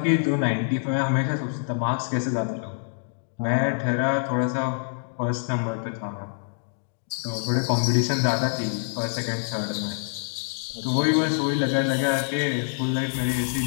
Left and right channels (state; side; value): silent; right; digital silence